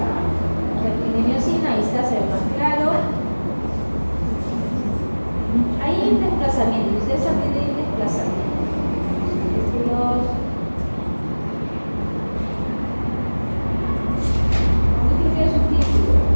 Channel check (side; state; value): both; inverted; correlation -1.00